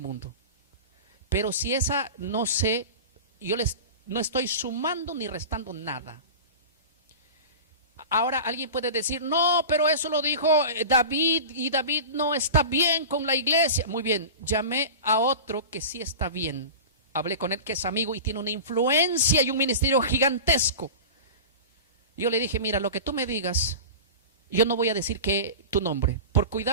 Pero si esa no sé, no estoy sumando ni restando nada. Ahora alguien puede decir, no, pero eso lo dijo David y David no está bien con la iglesia. Muy bien, llamé a otro que sí está bien. Hablé con él, que es amigo y tiene una influencia y un ministerio gigantesco. Yo le dije, mira, lo que tú me digas, yo no voy a decir que tu nombre, por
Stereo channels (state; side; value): inverted; both; correlation -0.31